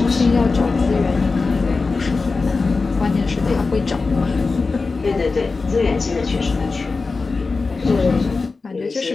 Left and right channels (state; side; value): quieter; right; 4.1 dB